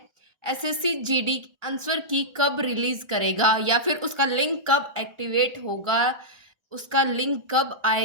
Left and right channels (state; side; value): late; left; 1.4 ms